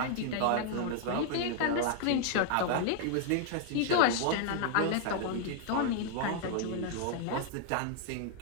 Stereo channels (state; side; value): different; both; correlation 0.00